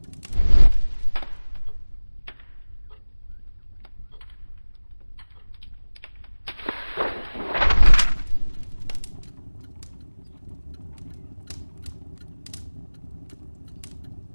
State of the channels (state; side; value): inverted; both; correlation -1.00